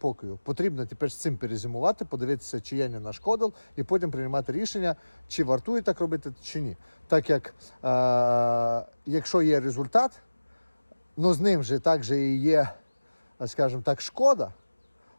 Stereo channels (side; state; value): both; inverted; correlation -1.00